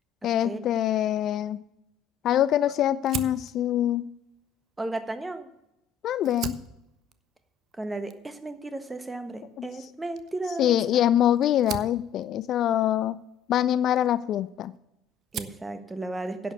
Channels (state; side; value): quieter; right; 8.6 dB